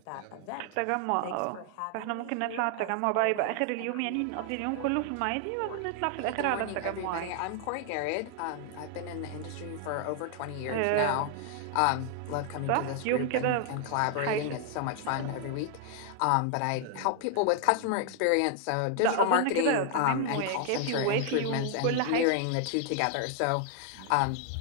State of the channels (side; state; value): both; different; correlation 0.00